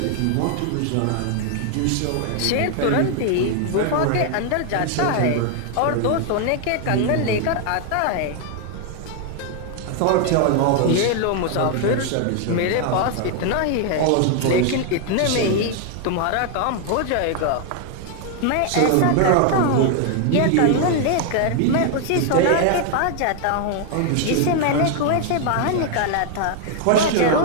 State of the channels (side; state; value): both; different; correlation 0.00